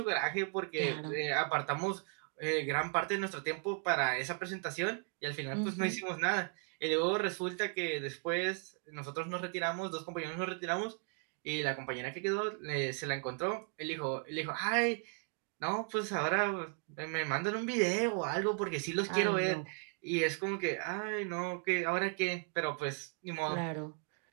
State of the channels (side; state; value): left; quieter; 40.0 dB